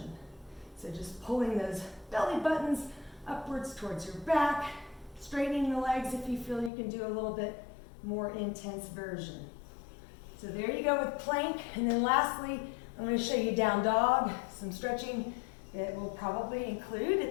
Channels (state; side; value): drops out; right; at 6.7 s